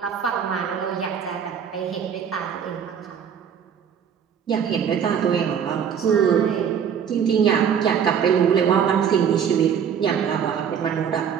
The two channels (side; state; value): left; quieter; 7.9 dB